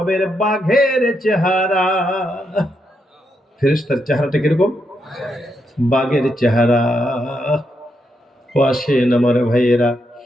বাঘের চেহারা। ফেরেশতার চেহারাটা কিরকম? বাঘের চেহারা। ও আসেন আমার ভাইয়েরা,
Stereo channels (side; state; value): both; normal; correlation 0.81